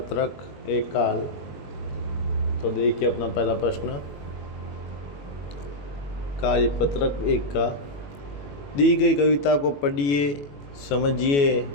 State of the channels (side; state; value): right; late; 21 ms